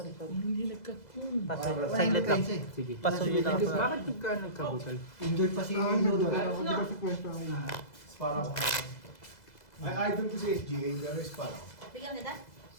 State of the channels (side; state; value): right; late; 2.0 ms